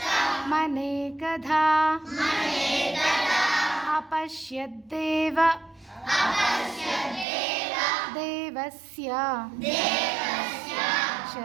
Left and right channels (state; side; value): drops out; left; at 7.2 s